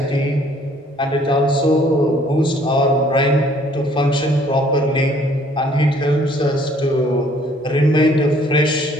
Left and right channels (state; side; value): normal; both; correlation 0.60